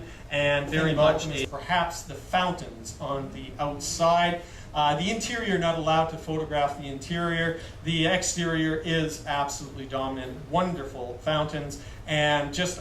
and very much perhaps the fountains on the outside. The interior, not allowed to photograph the interior. The exterior is absolutely dominant. Wonderful fountains, and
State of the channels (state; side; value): identical; both; correlation 1.00